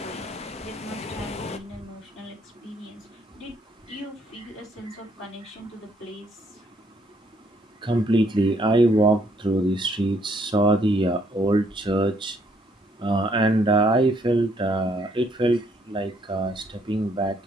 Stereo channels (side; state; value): both; normal; correlation 0.68